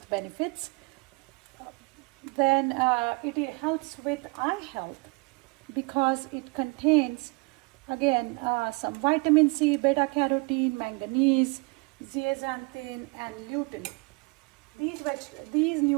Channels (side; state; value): left; quieter; 29.8 dB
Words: benefits. Then it helps with eye health because it contains again some vitamin C, beta carotene, manganese, zeaxanthin and lutein. These